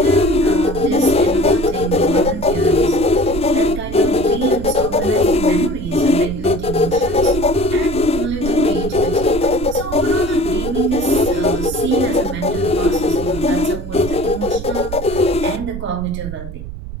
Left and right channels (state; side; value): noise; right; rumble, 9 dB below the sound